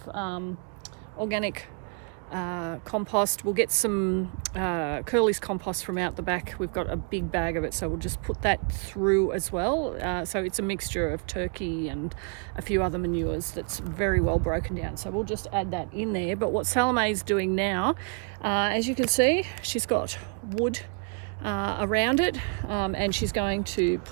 organic compost. We'll get some Curly's compost from out the back. We've got a big bag of it, so we'll just put that through as well. So it's a mixture of turkey and a few other manures that's very well broken down. So we'll just add that in there. But what Salome's doing now, as you can see, she's got wood around it, and she's going to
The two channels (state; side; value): quieter; left; 39.9 dB